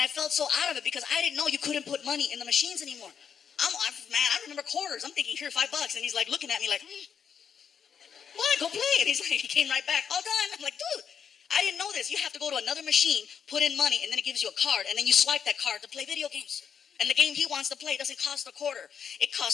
I felt so out of it because I didn't know you couldn't put money in the machines anymore. I remember quarters. I'm thinking, here, $5. And he's like looking at me like, what? Go play. And he's like, he came right back. All done. I'm like, dude, I didn't know this. You have to go to another machine, put in money, and then it gives you a card. And then you swipe that card to play video games. And the game he wants to play doesn't cost a quarter. It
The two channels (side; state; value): right; quieter; 7.4 dB